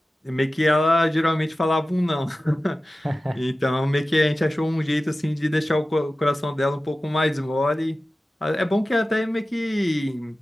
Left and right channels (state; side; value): normal; both; correlation 0.95